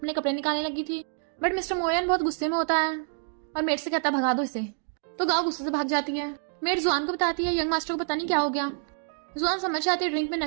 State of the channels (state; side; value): silent; left; digital silence